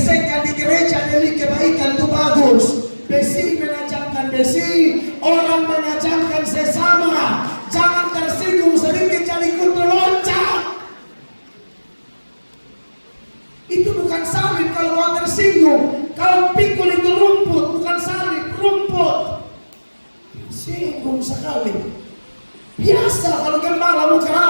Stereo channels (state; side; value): inverted; both; correlation -1.00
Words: di gereja demi kebaikan itu bagus. Besi menajamkan besi, orang menajamkan sesama. Jangan tersinggung sedikit jadi ikut loncat. Itu bukan salib kalau mau tersinggung. Kalau pikul itu rumput, bukan salib, rumput. Singgung sekali. Biasa kalau gembalamu